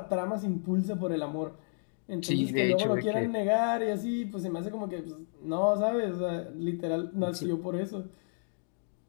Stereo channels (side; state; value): right; silent; digital silence